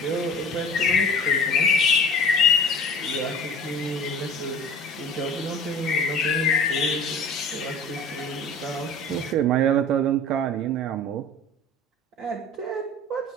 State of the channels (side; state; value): both; normal; correlation 0.42